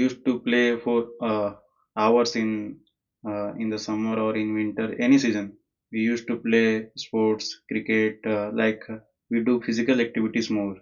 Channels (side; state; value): both; identical; correlation 1.00